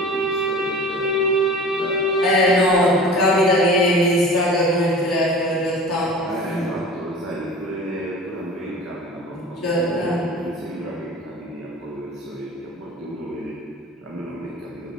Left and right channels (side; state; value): both; normal; correlation 0.40